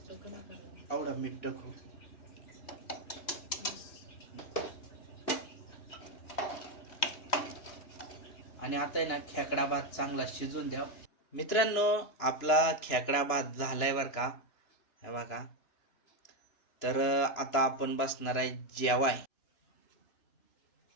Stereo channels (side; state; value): right; late; 3.0 ms